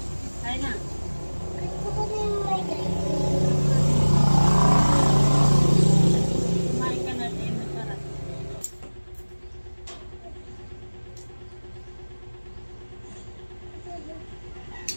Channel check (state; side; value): inverted; both; correlation -1.00